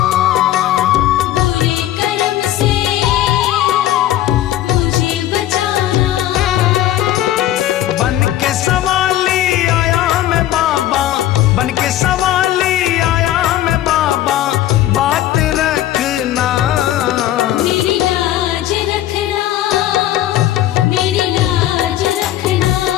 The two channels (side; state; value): right; quieter; 13.3 dB